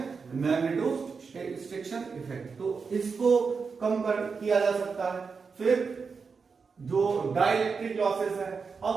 मैग्नेटोस्ट्रिक्शन इफेक्ट। तो इसको कम किया जा सकता है। फिर जो डाइलेक्ट्रिक लॉसेस है,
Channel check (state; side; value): quieter; left; 5.2 dB